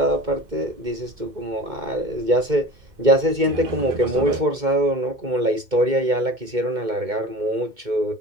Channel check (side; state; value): left; late; 2.2 ms